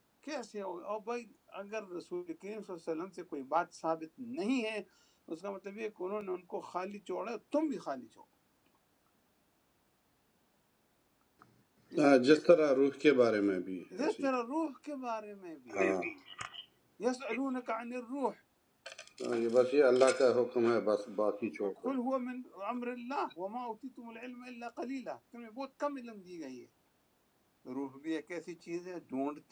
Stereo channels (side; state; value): both; identical; correlation 1.00